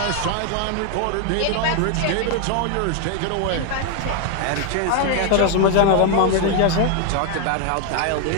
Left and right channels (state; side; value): different; both; correlation 0.00